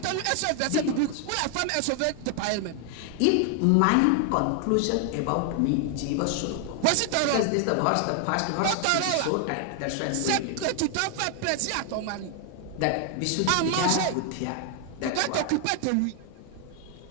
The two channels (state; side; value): different; both; correlation 0.00